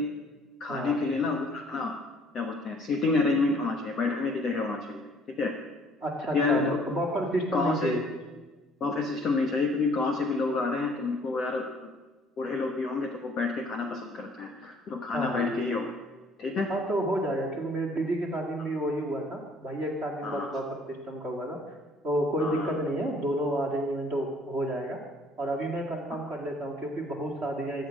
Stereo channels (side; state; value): both; normal; correlation 0.59